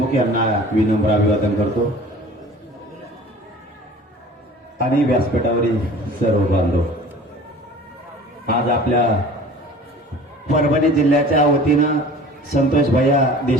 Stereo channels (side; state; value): both; normal; correlation 0.44